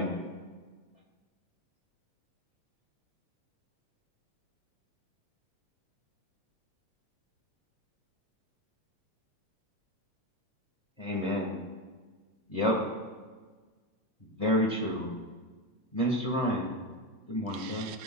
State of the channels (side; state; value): both; normal; correlation 0.16